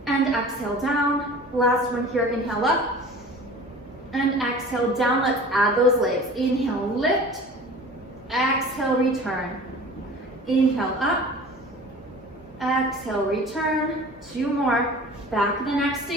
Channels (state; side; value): normal; both; correlation 0.42